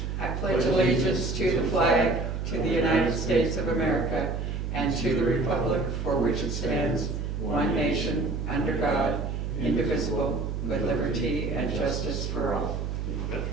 I pledge allegiance to the flag, to the United States of America, and to the republic for which it stands, one nation, under God, indivisible, with liberty and justice for all.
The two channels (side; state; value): right; noise; hum, 3 dB below the sound